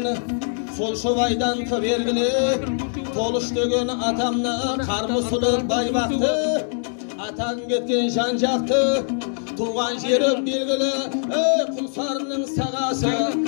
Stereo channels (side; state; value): right; silent; 64 dB below the other